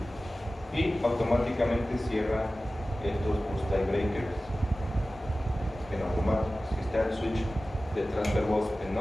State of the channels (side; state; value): both; normal; correlation 0.96